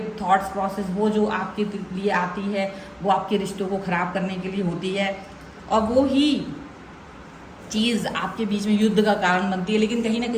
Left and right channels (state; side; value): identical; both; correlation 1.00